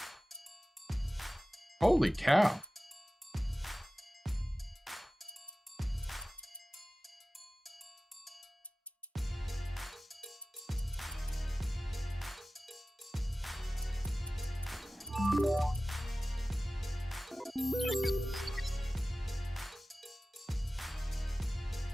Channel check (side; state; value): both; normal; correlation 0.97